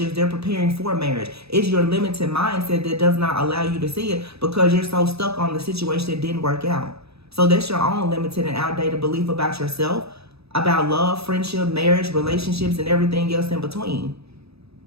They're preparing for marriage. It's your limited mindset that does not allow you to see it because you're so stuck on the situation that didn't work out. So that's your own limited and outdated belief about yourself, about love, friendship, marriage, relationships, and everything else in between.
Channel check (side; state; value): left; late; 0.78 ms